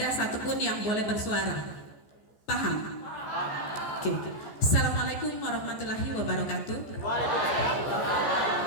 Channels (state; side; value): late; right; 14 ms